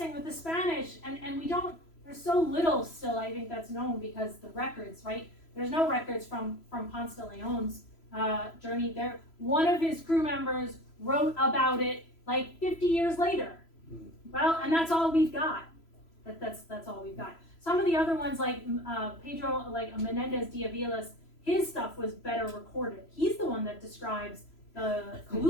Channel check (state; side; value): late; right; 3.0 ms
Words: with the Spanish, and we don't, there's so little still, I think, that's known because the records, right? There's no records from Ponce de Leon's journey there. One of his crew members wrote about it like 50 years later. Well, and that's all we've got. That's all we've got. Some of the other ones, like Pedro, like Menendez de Avila's, his stuff was better recorded. He's the one that describes the